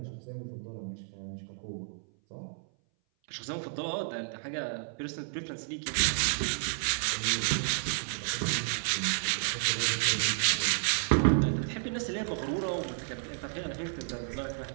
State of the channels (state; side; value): silent; left; 57 dB below the other